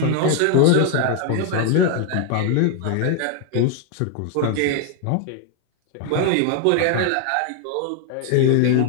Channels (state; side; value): different; both; correlation 0.01